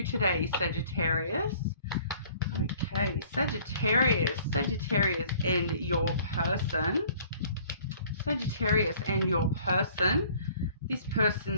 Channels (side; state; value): both; inverted; correlation -0.54